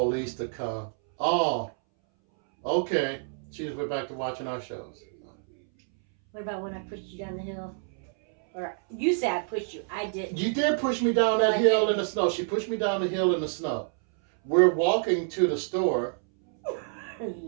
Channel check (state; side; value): silent; left; 60 dB below the other